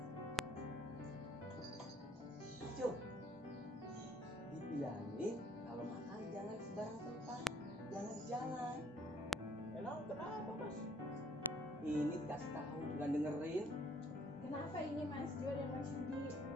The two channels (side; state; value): both; normal; correlation 0.64